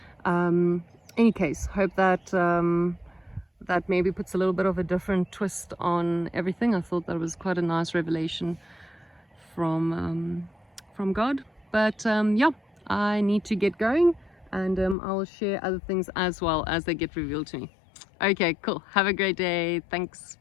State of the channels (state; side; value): drops out; right; at 15.0 s